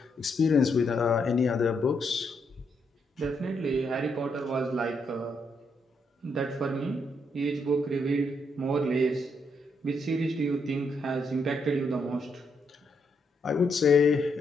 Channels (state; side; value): normal; both; correlation 0.77